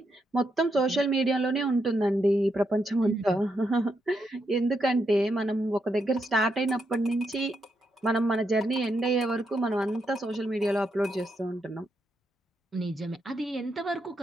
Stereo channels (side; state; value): both; normal; correlation 0.81